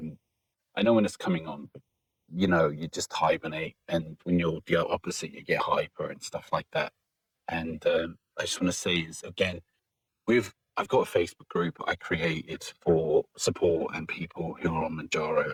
know when it's coming on, but you just hibernate, and when you're the opposite, you get hyper and stuff like that. And I just want to say is again, I've got a Facebook group I created for support and people who are on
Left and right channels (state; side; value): identical; both; correlation 1.00